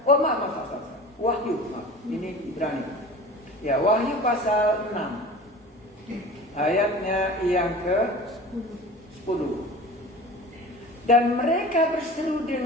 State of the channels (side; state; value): both; normal; correlation 0.38